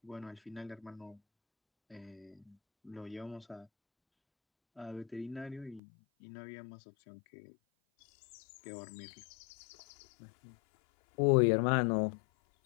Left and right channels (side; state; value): right; drops out; at 5.8 s